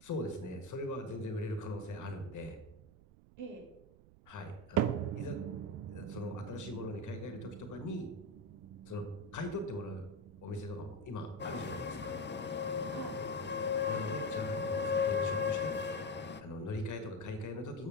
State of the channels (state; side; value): noise; right; rumble, 22 dB below the sound